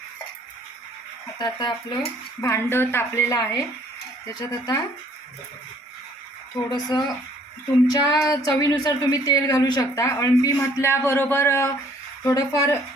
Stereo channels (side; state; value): both; normal; correlation 0.60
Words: आता आपलं भांडं तापलेलं आहे, त्याच्यात आता थोडंसं तुमच्या चवीनुसार तुम्ही तेल घालू शकता. अळंबी म्हटल्याबरोबर थोडंफार